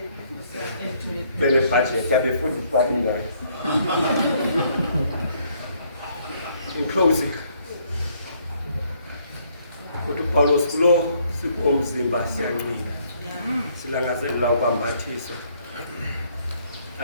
Bene budget yabe futhi babinga. In closing, uPaulos kulo sikomzimba siyanqina. Silangazelela ukwambathiswa.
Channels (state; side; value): inverted; both; correlation -0.67